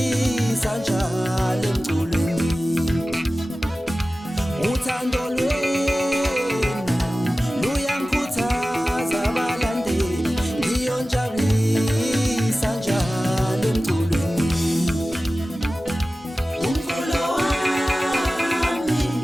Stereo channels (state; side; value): normal; both; correlation 0.96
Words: njalo emculweni. Uthando lwenu luyangikhuthaza abalandeli, ngiyonjabulisa njalo emculweni. Umculo wami